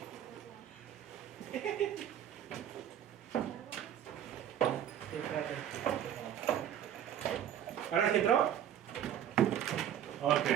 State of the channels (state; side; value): quieter; left; 10.2 dB